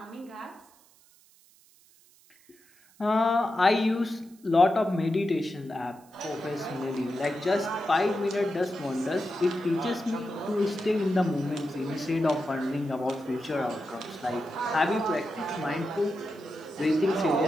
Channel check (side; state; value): right; noise; hiss, 29 dB below the sound